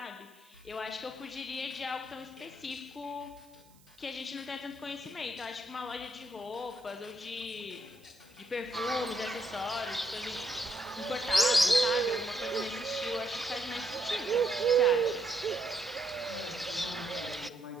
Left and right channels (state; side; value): noise; right; hiss, 28 dB below the sound